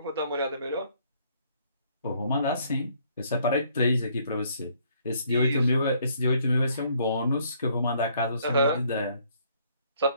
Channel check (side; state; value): both; inverted; correlation -0.65